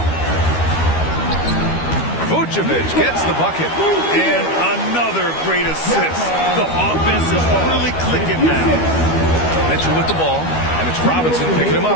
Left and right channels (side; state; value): right; late; 12 ms